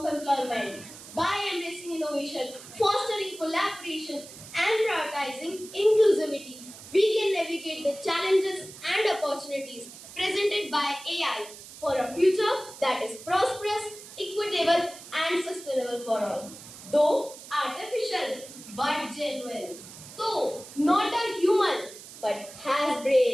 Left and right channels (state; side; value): noise; right; hiss, 16 dB below the sound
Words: employment. By embracing innovation, fostering collaboration, and prioritizing inclusivity, we can navigate the challenges and opportunities presented by AI for a future that is prosperous, equitable, and sustainable for all. Though artificial but genuine. Though not a human, but has